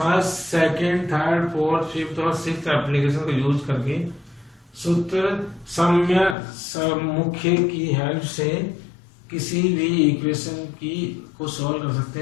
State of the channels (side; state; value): right; drops out; at 6.4 s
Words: second, third, fourth, fifth और सिक्स्थ एप्लीकेशन को यूज करके सूत्र साम्य मुख्य की हेल्प से किसी भी इक्वेशन की को सॉल्व कर सकते